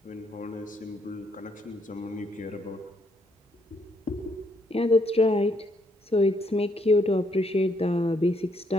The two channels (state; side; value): normal; both; correlation 0.73